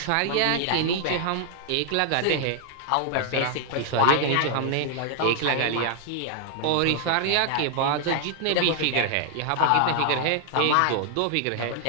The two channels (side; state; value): both; different; correlation 0.00